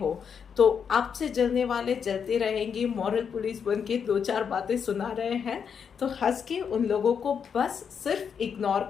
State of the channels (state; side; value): quieter; right; 7.0 dB